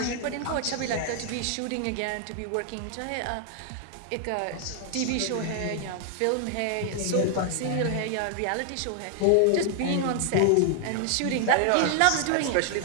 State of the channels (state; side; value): different; both; correlation 0.00